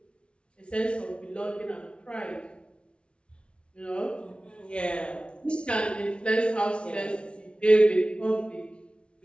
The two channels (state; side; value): late; right; 0.058 ms